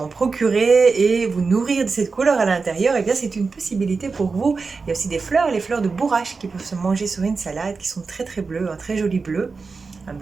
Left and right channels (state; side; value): quieter; left; 4.5 dB